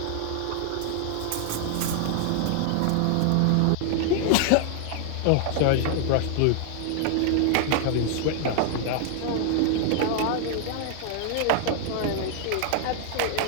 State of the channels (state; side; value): different; both; correlation 0.00